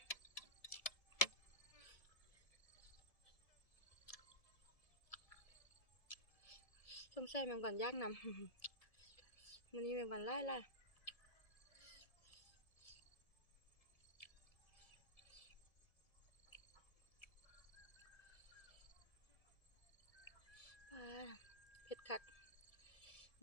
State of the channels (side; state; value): right; late; 1.7 ms